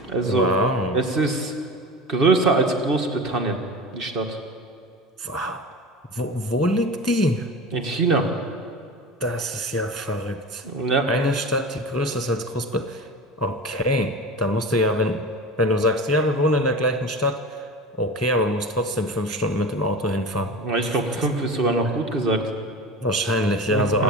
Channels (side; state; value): both; normal; correlation 0.32